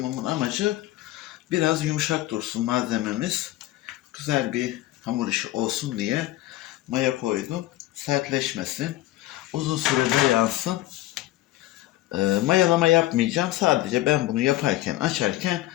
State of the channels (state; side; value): quieter; right; 16.0 dB